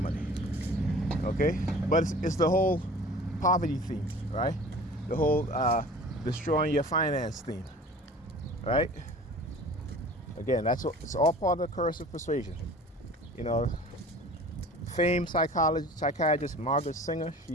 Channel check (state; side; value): normal; both; correlation 0.43